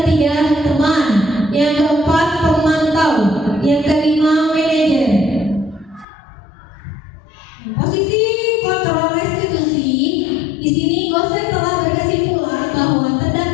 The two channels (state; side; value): drops out; right; at 6.1 s